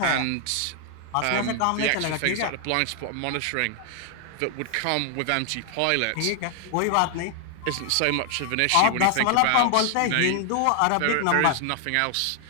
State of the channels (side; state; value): both; different; correlation 0.00